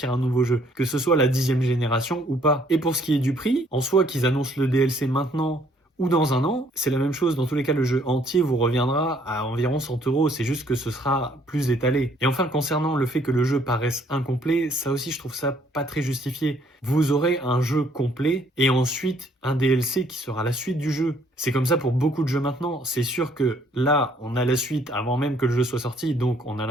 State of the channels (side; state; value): both; normal; correlation 0.64